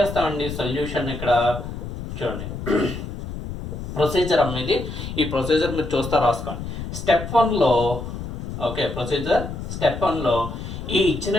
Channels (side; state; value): left; noise; rumble, 7 dB below the sound